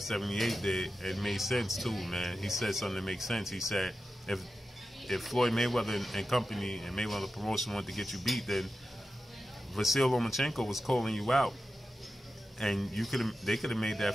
did, it made sense too, man. He said something that makes sense. He said if Floyd Mayweather and company and Mayweather Promotion wanted to get you beat, then Vasyl Lomachenko was calling you out, and they could have made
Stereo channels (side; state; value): both; normal; correlation 0.92